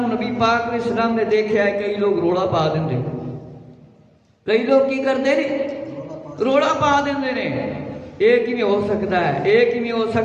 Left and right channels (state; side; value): identical; both; correlation 1.00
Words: پاک علیہ السلام نے دیکھا ہے. کئی لوگ روڑا پا دیں، کئی لوگ کی کرتے ہیں روڑا پا دیں. ایک ہی میں ہو سکتا ہے، ایک ہی میں ہو